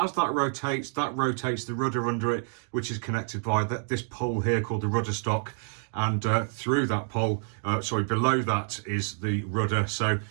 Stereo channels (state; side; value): silent; left; 59 dB below the other